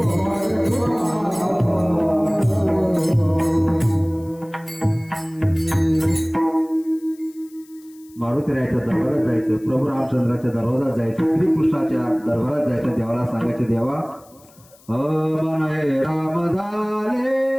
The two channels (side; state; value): left; noise; hiss, 27 dB below the sound